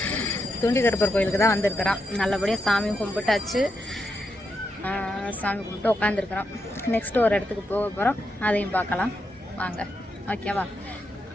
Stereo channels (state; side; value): normal; both; correlation 0.84